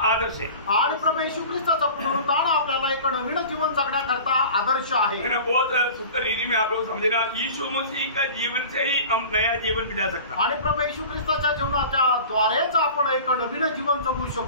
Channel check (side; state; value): both; inverted; correlation -0.39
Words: आदर्श है. आणि प्रभू येशू ख्रिस्ताचं पुनरुत्थान आपल्याला एक नवीन जीवन जगण्याकरता आदर्श आहे. बहुत सुंदर रीति में आप लोग समझना. यीशु मसीह का जीवन से ही हम नया जीवन बिता सकते. आणि प्रभू येशू ख्रिस्ताच्या जीवनाच्या द्वारेच आपण एक नवीन जीवन जगू